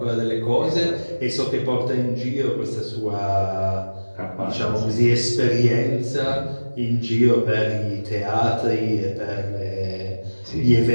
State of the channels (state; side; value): inverted; both; correlation -1.00